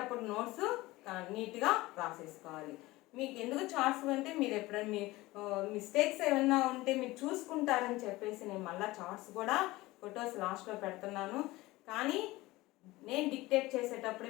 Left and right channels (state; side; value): quieter; right; 19.5 dB